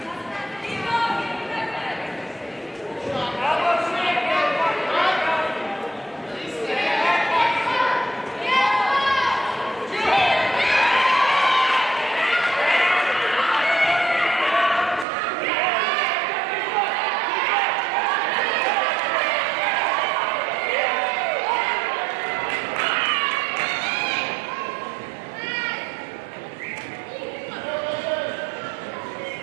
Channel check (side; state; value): left; drops out; at 15.1 s